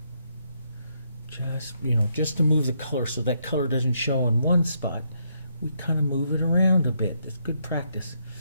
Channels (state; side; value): inverted; both; correlation -0.75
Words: Just, you know, just to move the color so that color doesn't show in one spot. We kind of move it around a bit. That's good practice.